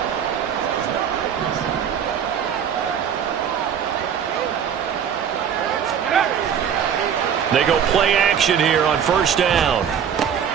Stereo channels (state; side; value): quieter; left; 8.2 dB